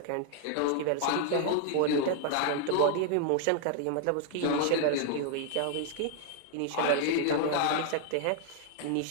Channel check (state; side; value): different; both; correlation 0.00